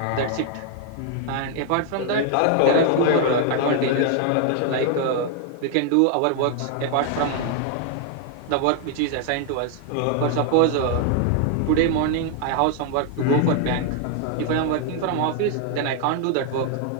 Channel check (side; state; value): both; different; correlation 0.00